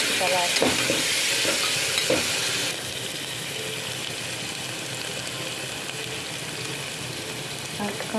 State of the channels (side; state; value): both; identical; correlation 1.00